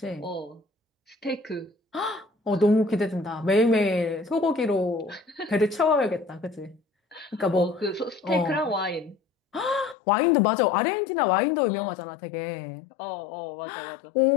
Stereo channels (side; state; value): right; drops out; at 10.0 s